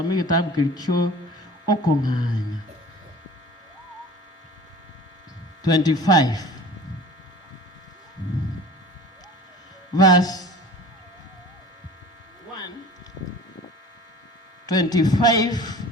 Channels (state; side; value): normal; both; correlation 0.42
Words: kitabu kilicho okonganya 25 verse 1 25